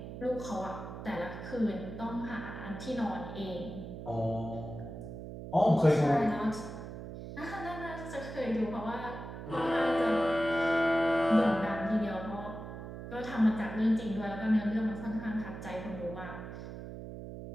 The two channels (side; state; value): right; noise; hum, 10 dB below the sound